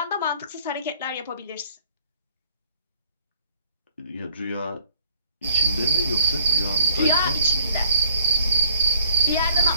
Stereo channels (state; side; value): inverted; both; correlation -0.58